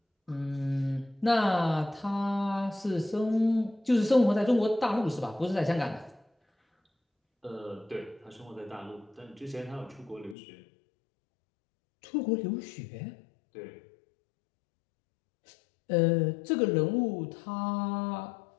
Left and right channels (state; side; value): drops out; right; at 10.4 s